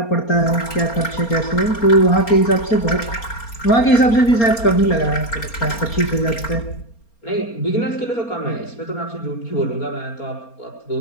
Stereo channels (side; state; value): right; late; 4.3 ms